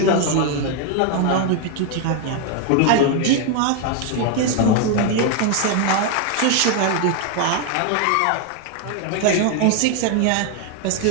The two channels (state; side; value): different; both; correlation 0.01